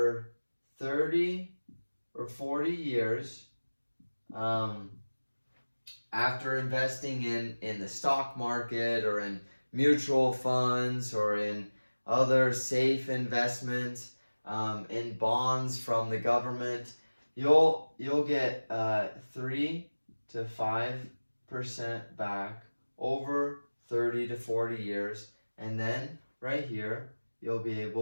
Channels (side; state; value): both; inverted; correlation -1.00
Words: 30 or 40 years, after investing in the stock market or in mutual funds or in other safe investments, in bonds from the government, you'll get 3 to 5% back over 30 to 40 years, and then right here you'll be